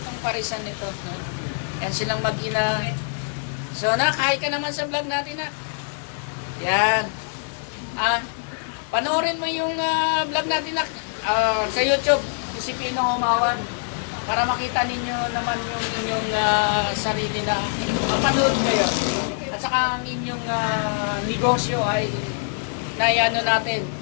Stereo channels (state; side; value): silent; right; 63 dB below the other